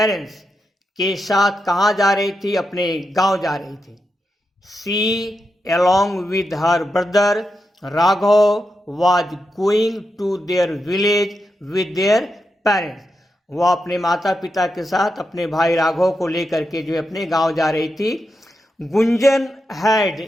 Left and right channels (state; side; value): normal; both; correlation 0.87